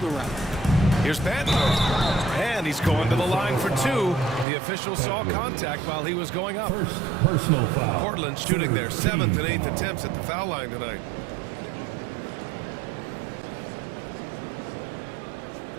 around. Here's Patton. And he's going to the line for 2. The official saw contact while he was going up. First personal foul. Portland shooting their 7th and 8th attempts at the foul line tonight.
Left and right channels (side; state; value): left; drops out; at 4.5 s